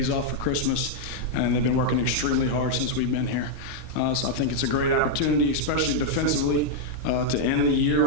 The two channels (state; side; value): normal; both; correlation -0.01